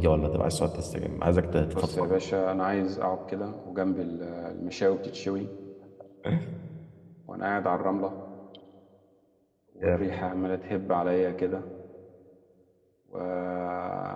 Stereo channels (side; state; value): both; identical; correlation 1.00